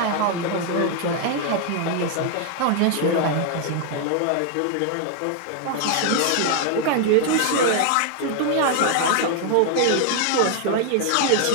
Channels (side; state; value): both; different; correlation 0.00